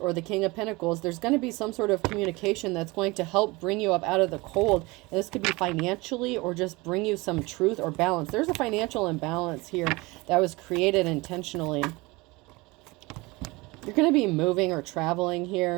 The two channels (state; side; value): quieter; left; 23.5 dB